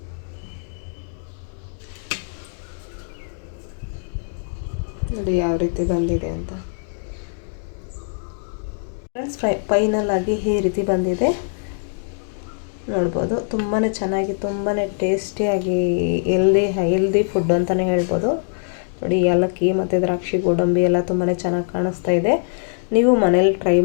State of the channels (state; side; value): silent; right; digital silence